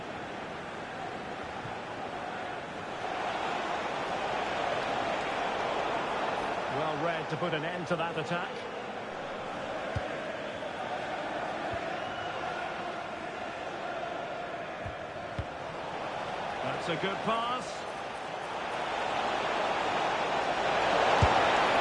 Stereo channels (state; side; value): identical; both; correlation 1.00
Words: Well read to put an end to that attack. That's a good pass.